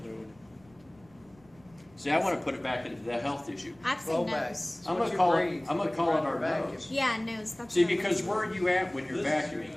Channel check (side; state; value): right; noise; rumble, 29 dB below the sound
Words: See, I want to put it back into the health issue. I've seen nose. I'm gonna call it our nose. Yeah, nose. That's See, what I because was- where are you at when you're